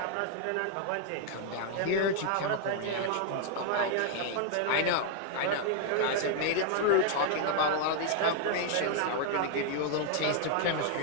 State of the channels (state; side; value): different; both; correlation 0.00